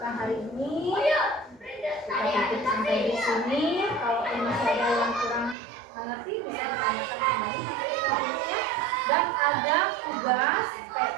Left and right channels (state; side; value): drops out; left; at 5.6 s